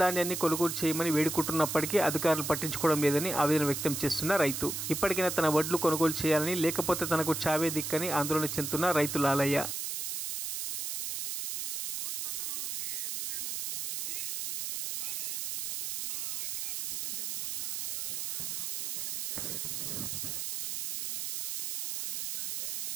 ధాన్యాన్ని కొనుగోలు చేయమని వేడుకుంటున్నప్పటికీ అధికారులు పట్టించుకోవడం లేదని ఆవేదన వ్యక్తం చేస్తున్న రైతు ఇప్పటికైనా తన వడ్లు కొనుగోలు చేయాలని, లేకపోతే తనకు చావే దిక్కని ఆందోళన చెందుతున్న రైతు లాలయ్య.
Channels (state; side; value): noise; right; hiss, 2 dB below the sound